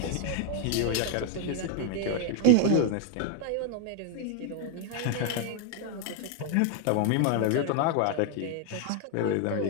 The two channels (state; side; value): different; both; correlation 0.01